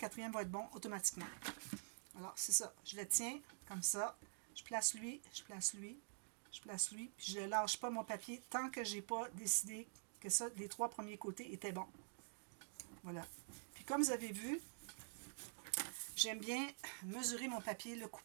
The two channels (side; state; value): left; silent; digital silence